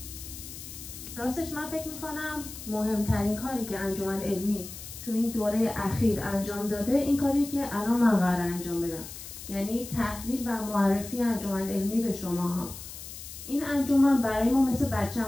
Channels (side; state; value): left; noise; hiss, 12 dB below the sound